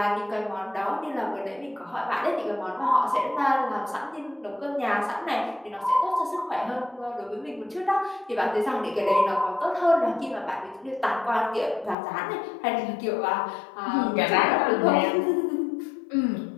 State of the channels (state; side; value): drops out; right; at 12.0 s